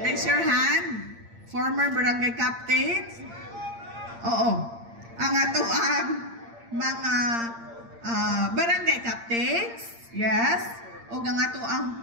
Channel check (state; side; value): late; left; 8.7 ms